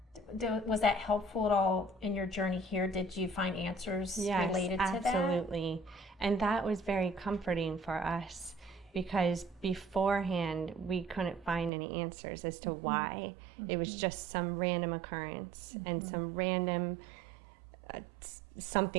Was that helpful at all in your journey here? Did you find answers related to that? Yes, absolutely. And that was very comforting for us, because beforehand we couldn't find any answers as to why. It was just some random occurrence and some random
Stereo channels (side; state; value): left; drops out; at 11.7 s